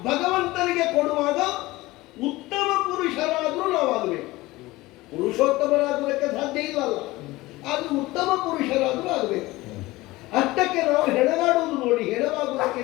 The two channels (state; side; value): quieter; right; 19.6 dB